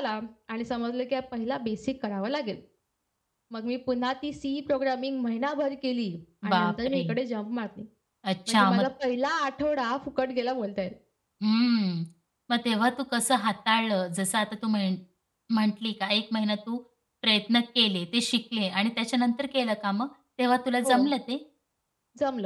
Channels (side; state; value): both; identical; correlation 1.00